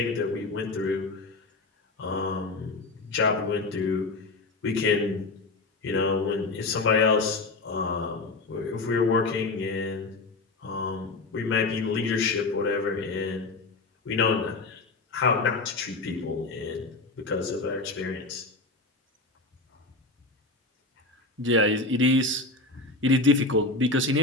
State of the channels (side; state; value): right; quieter; 3.3 dB